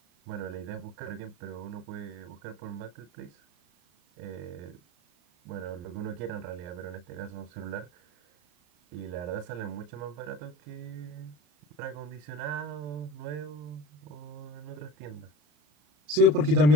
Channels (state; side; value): late; left; 34 ms